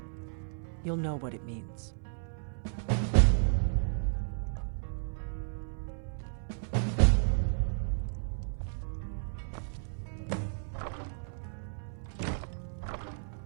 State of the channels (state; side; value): silent; left; 56 dB below the other